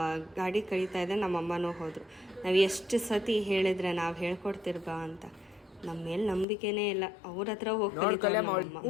ಗಾಡಿ ಕಳೀತಾ ಇದೆ, ನಮ್ಮ ಅಮ್ಮನೂ ಹೋದರು. ನಾವು ಎಷ್ಟು ಸತಿ ಹೇಳಿದ್ರೆ ನಾವು ಹೇಳ್ಕೊಡ್ತಿರ್ಬಾ ಅಂತ, ನಮ್ಮ ಮೇಲೆ ನಂಬಿಕೆನೇ ಇಲ್ಲ. ಅವ್ರ ಹತ್ರ ಹೋಗಿ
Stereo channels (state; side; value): drops out; right; at 6.5 s